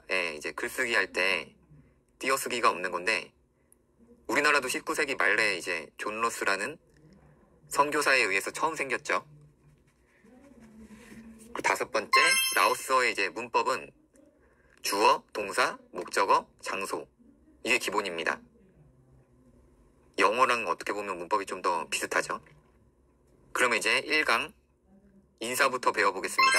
이제 글쓰기 할 때 띄어쓰기가 없는 건데, 우리나라도 19세기 말에 이제 존 러스라는 선교사에 의해서 처음 생겼죠. 다섯 번째, 라오스어의 이제 문법은 주어, 동사, 목적어, 장소 이게 기본입니다. 영어랑 어떻게 보면 문법이 좀 더 비슷하죠. 그러면 이제 1강 인사부터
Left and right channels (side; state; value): both; identical; correlation 1.00